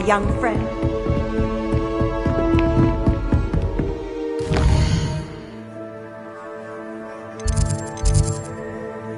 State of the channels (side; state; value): both; identical; correlation 1.00